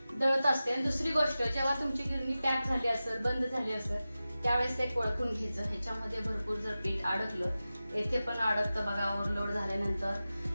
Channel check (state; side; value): inverted; both; correlation -0.95